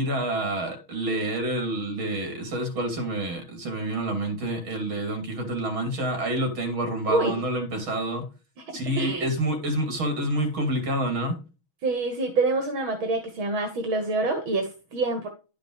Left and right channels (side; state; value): left; late; 6.3 ms